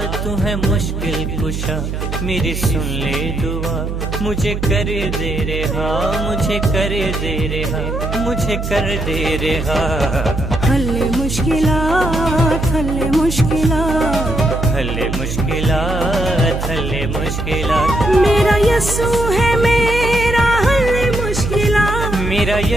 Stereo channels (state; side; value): noise; right; hum, 4 dB below the sound